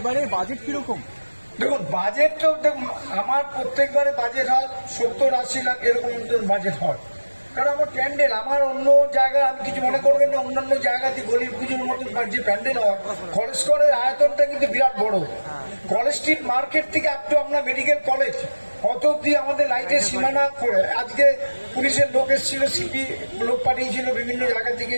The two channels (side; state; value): both; inverted; correlation -1.00